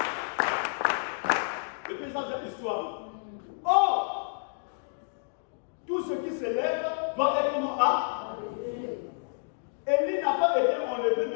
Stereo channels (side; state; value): right; silent; digital silence